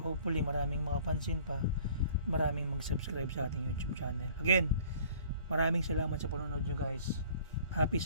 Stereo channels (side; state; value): both; inverted; correlation -0.51